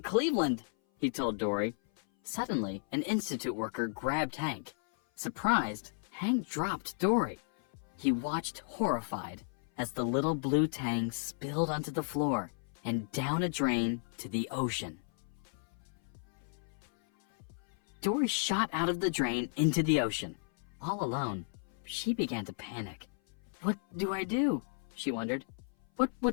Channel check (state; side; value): silent; right; 55 dB below the other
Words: he told Dory. Suddenly, an institute worker grabbed Hank. Surprised, Hank dropped Dory. He watched horrified as the little blue tang spilled onto the floor and down a drain to the ocean. Dory shot out of the drain into the ocean. All alone, she began to panic. "What do I do?" she wondered. "What